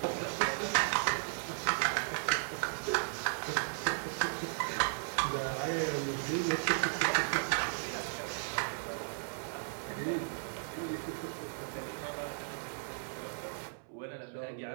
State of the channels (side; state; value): left; silent; 54 dB below the other